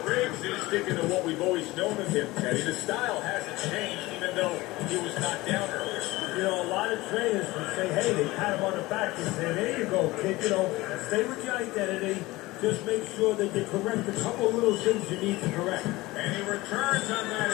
Briggs is sticking to what we've always known of him, Teddy. The style hasn't changed, even though he was knocked down earlier. You know, a lot of trainers would say, hey, they pat him on the back and say, there you go, kid. You know, stay with your identity. Just make sure that you correct a couple of little things you need to correct. And he returns on that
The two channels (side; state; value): right; quieter; 20.0 dB